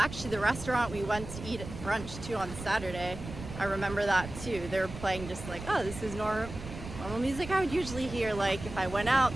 the restaurant we went to eat at brunch too on Saturday, I remember that too. They were playing just like, oh, this is normal music I would usually hear like if I went out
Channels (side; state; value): right; noise; rumble, 11 dB below the sound